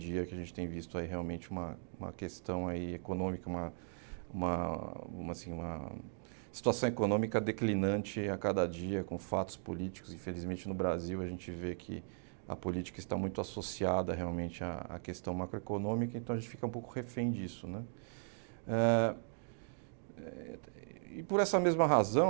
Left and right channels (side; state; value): left; silent; digital silence